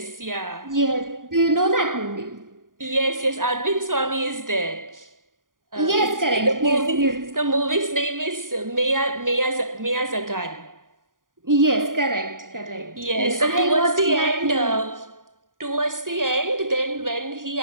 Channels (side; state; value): left; late; 0.90 ms